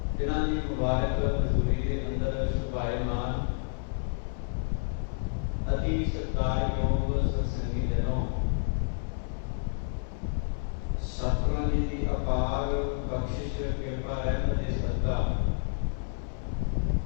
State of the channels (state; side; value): silent; right; 58 dB below the other